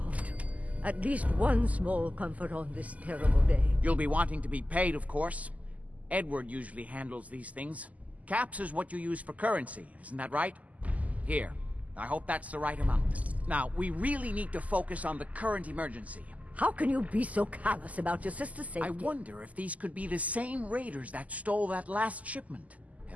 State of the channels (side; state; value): left; late; 0.074 ms